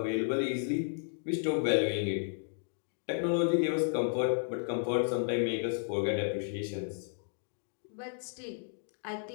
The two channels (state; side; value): silent; right; digital silence